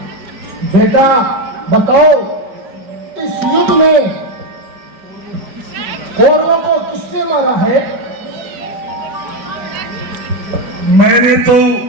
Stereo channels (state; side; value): late; left; 5.3 ms